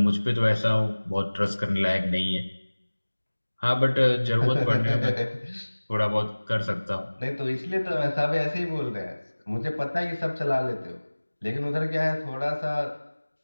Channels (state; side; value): inverted; both; correlation -1.00